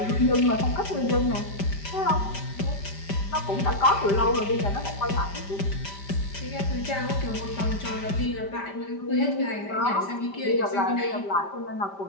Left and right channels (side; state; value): right; late; 5.1 ms